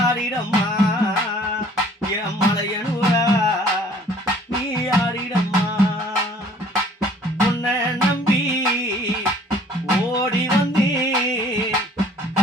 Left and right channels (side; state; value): both; normal; correlation 0.55